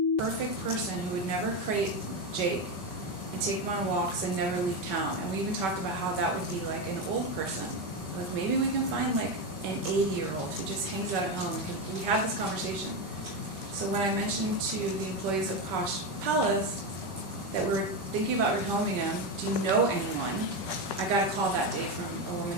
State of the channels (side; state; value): left; late; 5.3 ms